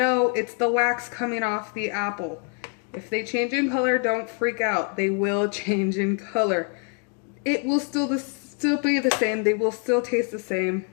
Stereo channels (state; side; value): quieter; right; 39.4 dB